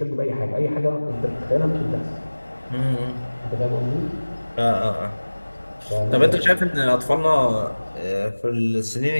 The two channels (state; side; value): inverted; both; correlation -1.00